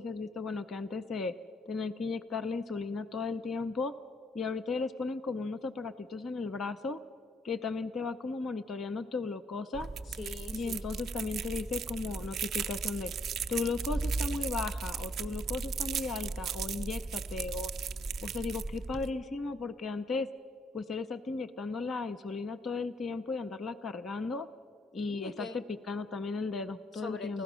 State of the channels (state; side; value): normal; both; correlation 0.69